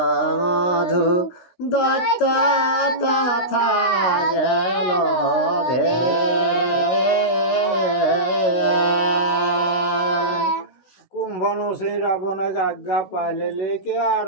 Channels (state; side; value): late; right; 16 ms